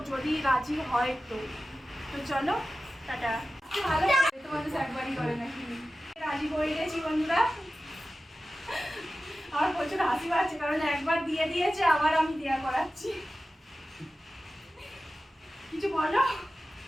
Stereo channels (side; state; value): both; normal; correlation 0.94